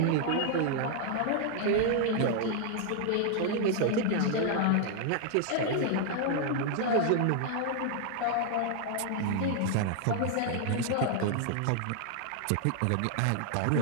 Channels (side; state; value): both; different; correlation 0.00